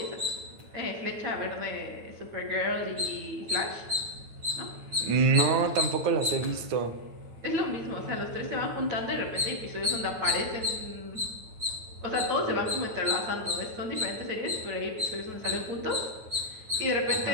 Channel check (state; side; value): late; left; 9.2 ms